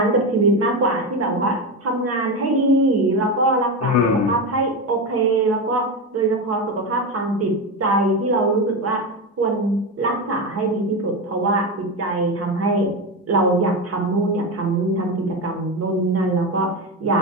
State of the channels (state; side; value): normal; both; correlation 0.16